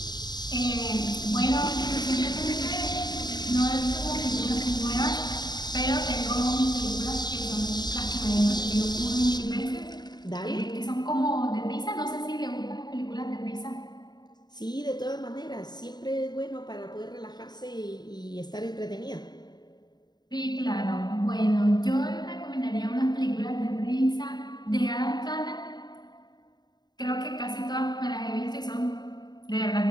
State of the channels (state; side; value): late; right; 0.20 ms